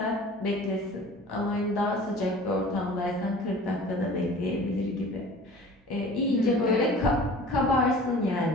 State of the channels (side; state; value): both; normal; correlation 0.43